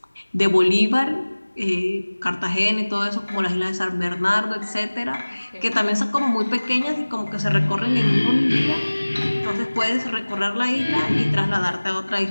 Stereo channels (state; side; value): inverted; both; correlation -1.00